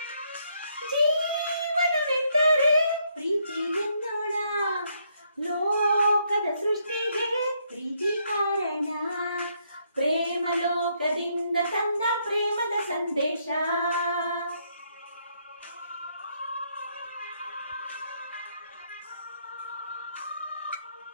ಜೀವನವೆಂದರೆ ಪ್ರೀತಿ ಎನ್ನೋಣ, ಲೋಕದ ಸೃಷ್ಟಿಗೆ ಪ್ರೀತಿ ಕಾರಣ. ಪ್ರೇಮ ಲೋಕದಿಂದ ತಂದ ಪ್ರೇಮದ ಸಂದೇಶ.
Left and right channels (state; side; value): inverted; both; correlation -0.73